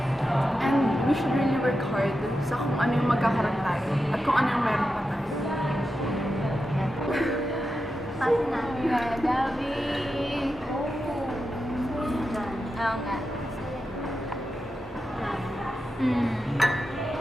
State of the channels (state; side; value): noise; left; hum, 24 dB below the sound